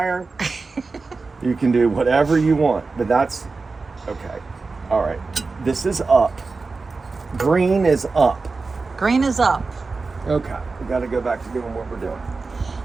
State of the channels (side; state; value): left; quieter; 4.1 dB